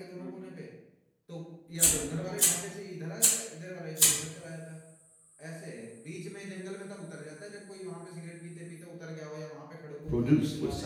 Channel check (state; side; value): identical; both; correlation 1.00